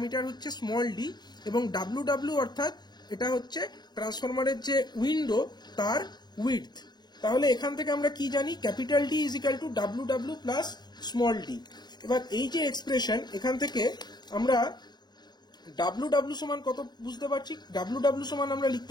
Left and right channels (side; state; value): right; late; 0.20 ms